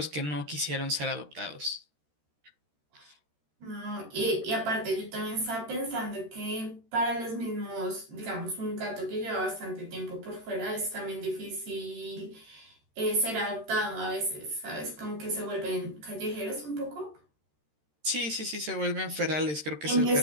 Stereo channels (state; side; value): late; left; 13 ms